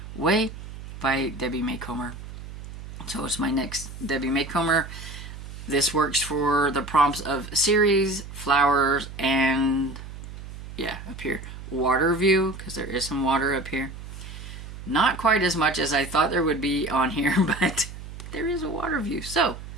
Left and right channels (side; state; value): right; noise; hum, 12 dB below the sound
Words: Way by Debbie Maycomer. So it's my next Debbie Maycomer. This works for the prompts of series, flowers, and yeah, up here, water view, because there is some water up here. Not quite as much as I thought there would be on here, but there is a water view, so